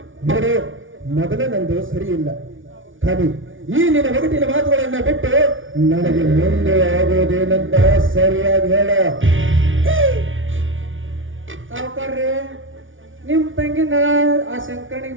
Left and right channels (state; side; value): late; left; 0.57 ms